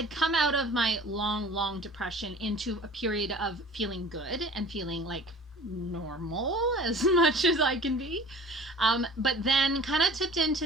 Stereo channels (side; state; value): both; normal; correlation 0.45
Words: come out of my long, long depression into a period of feeling good and feeling like normal as much as I can be. But then kind of tipped into